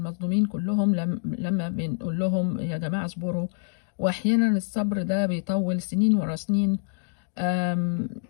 كلهم لما بنقول لهم يا جماعة اصبروا، وأحيانا الصبر ده بيطول سنين ورا سنين.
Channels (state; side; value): silent; right; digital silence